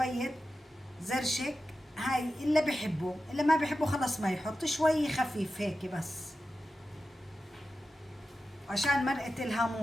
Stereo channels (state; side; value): normal; both; correlation 0.92